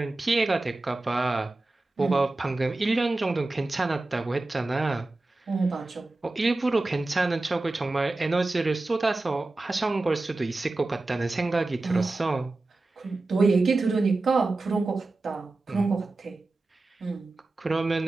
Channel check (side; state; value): left; quieter; 3.1 dB